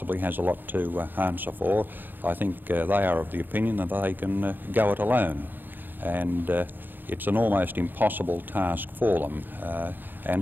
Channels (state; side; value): late; left; 0.091 ms